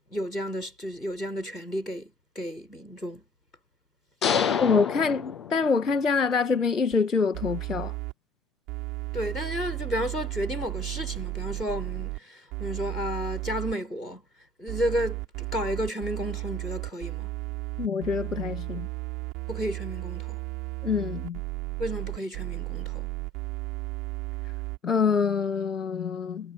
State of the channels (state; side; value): normal; both; correlation 0.52